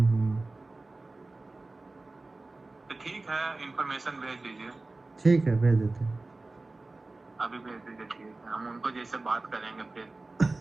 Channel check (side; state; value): left; quieter; 3.2 dB